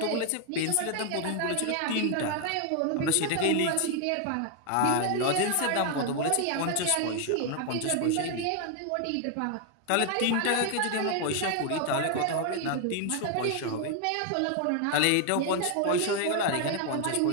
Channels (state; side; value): different; both; correlation 0.00